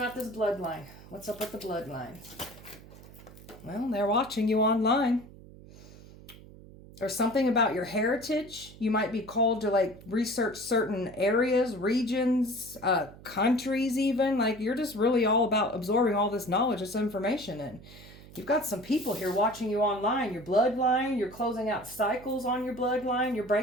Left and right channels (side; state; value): right; noise; hum, 19 dB below the sound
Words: this bloodline. What's up with the bloodline? Well, they're watching you online. There's something about your heritage. You might be called to like research certain areas, regions, countries even. Like you're just really all about absorbing all this knowledge, this information in. You've got some people here watching you online. Your bloodline, you're closing out cycles on your bloodline. You're